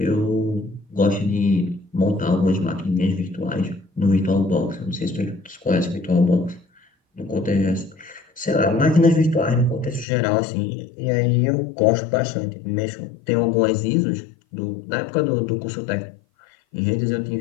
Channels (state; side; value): drops out; right; at 10.1 s